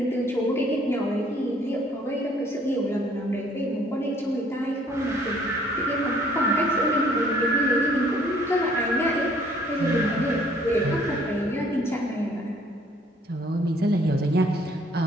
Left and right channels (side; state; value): both; normal; correlation 0.60